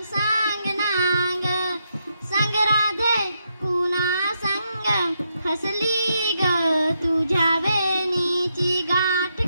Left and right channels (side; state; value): both; inverted; correlation -0.81